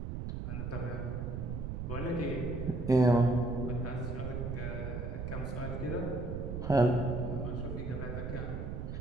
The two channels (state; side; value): noise; right; rumble, 4 dB below the sound